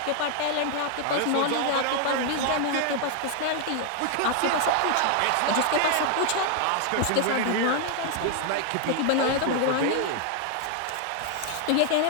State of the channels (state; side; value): different; both; correlation 0.00